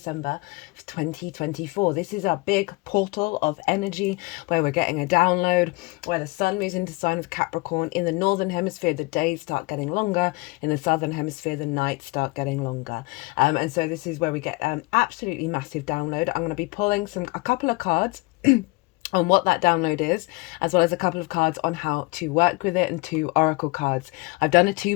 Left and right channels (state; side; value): quieter; right; 24.9 dB